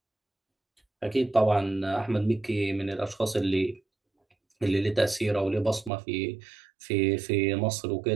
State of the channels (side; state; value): left; drops out; at 5.9 s